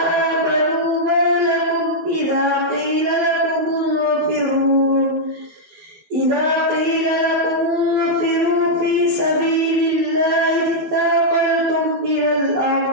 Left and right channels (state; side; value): late; left; 12 ms